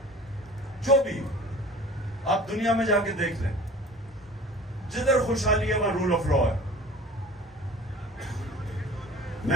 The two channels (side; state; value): both; normal; correlation 0.43